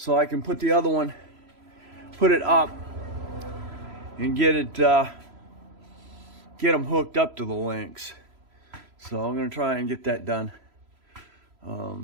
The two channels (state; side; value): late; left; 3.0 ms